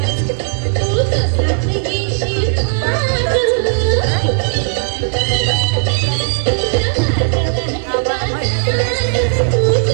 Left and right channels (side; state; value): left; silent; 59 dB below the other